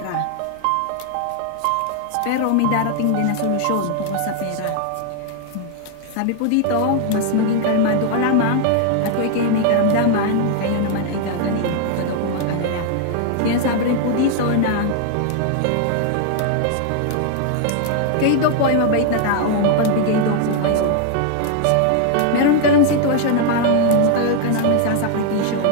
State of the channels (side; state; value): both; different; correlation 0.00